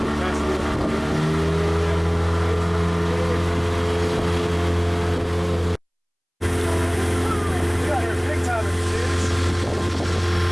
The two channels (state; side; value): identical; both; correlation 1.00